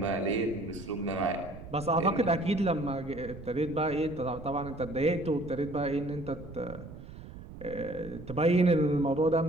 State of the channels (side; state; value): right; noise; rumble, 14 dB below the sound